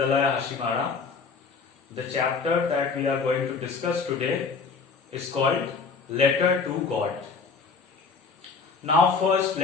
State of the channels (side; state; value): right; quieter; 4.9 dB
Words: Hashimara. The chapter that we are going to discuss today is called Letter to God. Now, first,